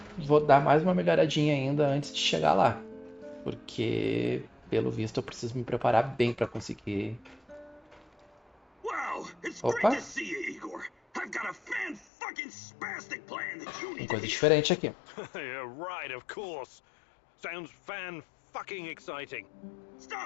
vou dar mais uma melhoradinha ainda antes de chegar lá. Porque, pelo visto, eu preciso me preparar bem para conseguir. Wow, it's great Opa, to see you, Igor. I've got a fan-fucking-spastic plan that you tem need to coisa hear. diferente aqui. Yeah, right, of course. Sounds fan-fucking exciting.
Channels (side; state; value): right; drops out; at 12.1 s